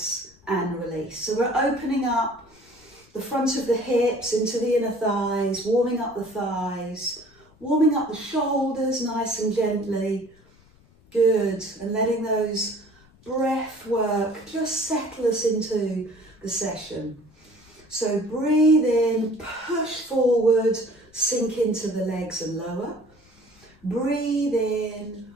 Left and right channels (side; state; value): left; noise; rumble, 28 dB below the sound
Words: and release. So we're opening up the front of the hips into the inner thighs, warming up the thighs, warming up the shoulders nice and gently. Good. And letting those breath work just settle us into the session. So breathe in, push forward, sink into the legs and lower. Breathe in,